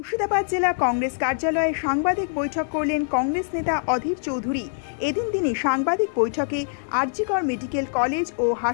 জেলা কংগ্রেস কার্যালয়ে সাংবাদিক বৈঠক করলেন কংগ্রেস নেতা অধীর চৌধুরী। এদিন তিনি সাংবাদিক বৈঠকে আরজিকর মেডিকেল কলেজ ও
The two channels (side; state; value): right; silent; 63 dB below the other